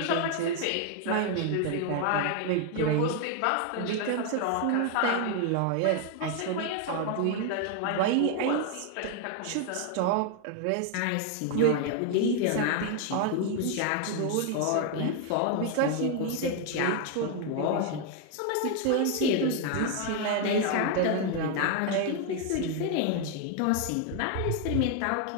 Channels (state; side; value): different; both; correlation 0.00